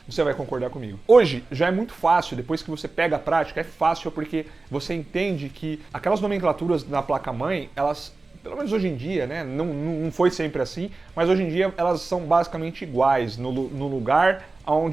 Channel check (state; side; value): quieter; left; 3.6 dB